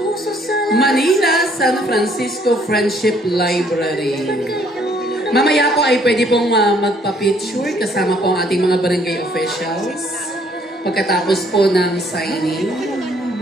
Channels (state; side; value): normal; both; correlation 0.64